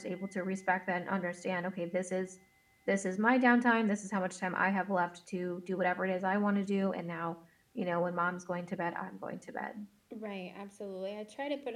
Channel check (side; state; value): both; identical; correlation 1.00